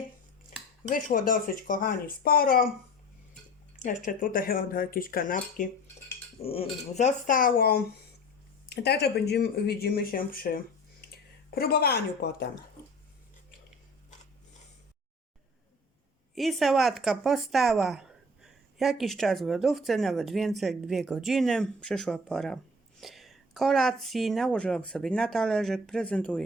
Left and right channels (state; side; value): normal; both; correlation 0.42